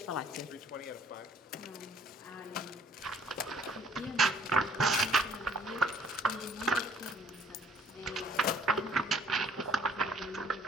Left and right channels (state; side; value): normal; both; correlation 0.59